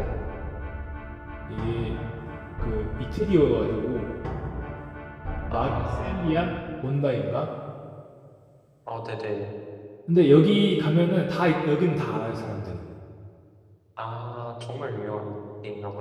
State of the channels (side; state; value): both; identical; correlation 1.00